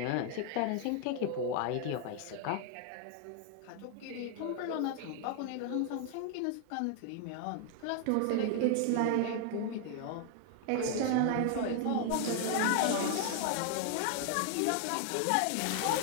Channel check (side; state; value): both; different; correlation 0.00